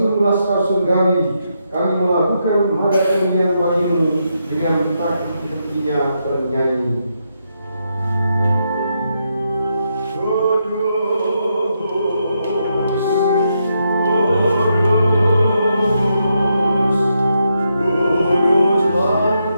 laskar surgawi, kami melakukan hada kemuliaan bagimu dengan tak henti-hentinya bernyanyi. Kudus,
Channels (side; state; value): both; inverted; correlation -0.81